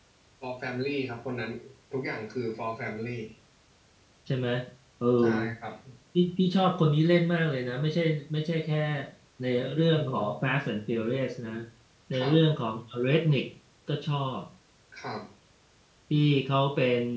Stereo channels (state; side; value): identical; both; correlation 1.00